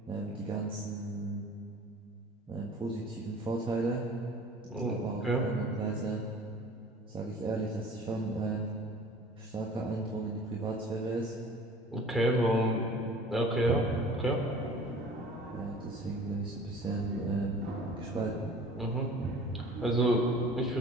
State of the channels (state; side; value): normal; both; correlation 0.45